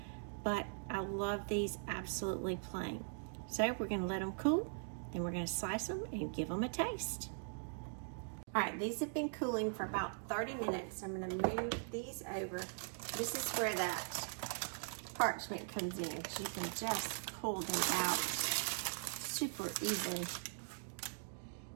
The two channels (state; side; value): silent; left; digital silence